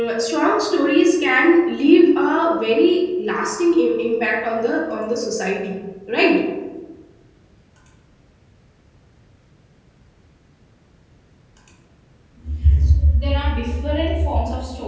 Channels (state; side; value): identical; both; correlation 1.00